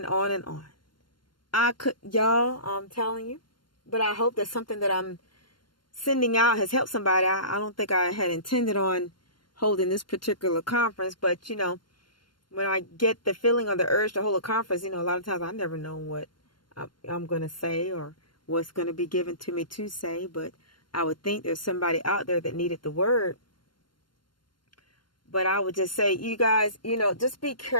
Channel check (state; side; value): late; right; 0.72 ms